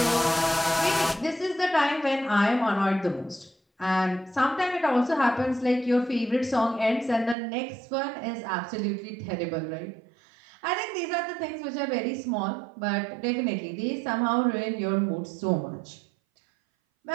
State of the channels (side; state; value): left; drops out; at 7.4 s